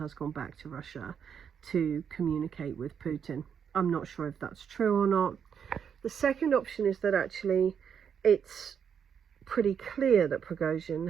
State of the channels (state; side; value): quieter; left; 7.5 dB